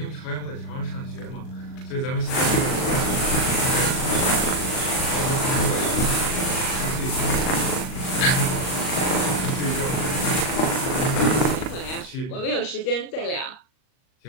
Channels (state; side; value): late; right; 38 ms